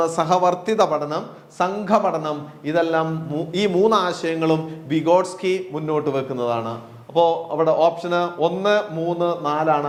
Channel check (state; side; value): identical; both; correlation 1.00